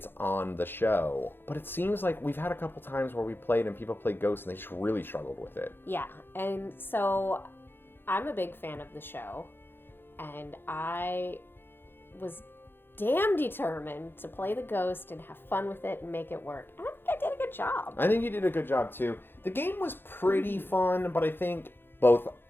on the show. But it seems like we've had a couple times where we played and people played Ghosts and they just really struggled with it. Yeah, and so I'm a big fan of the show, and I was damn determined to play the ghost and have fun with it and make it work. And I think I did a good job. I think you did a good job too. The game was pretty fun, but I think both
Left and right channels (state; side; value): late; right; 0.10 ms